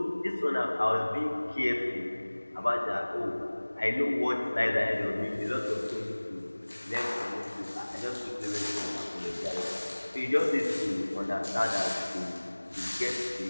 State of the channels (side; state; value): both; inverted; correlation -1.00